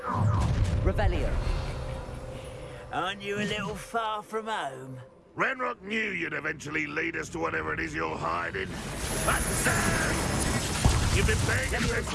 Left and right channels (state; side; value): identical; both; correlation 1.00